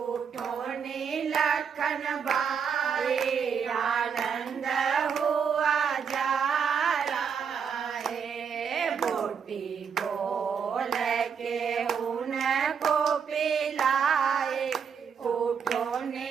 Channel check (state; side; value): quieter; left; 6.8 dB